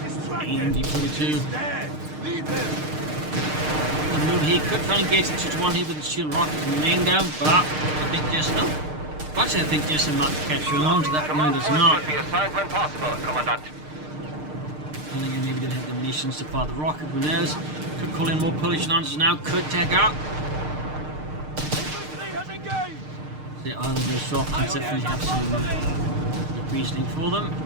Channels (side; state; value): left; late; 6.6 ms